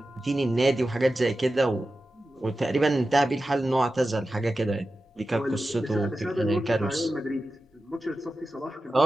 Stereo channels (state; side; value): normal; both; correlation 0.93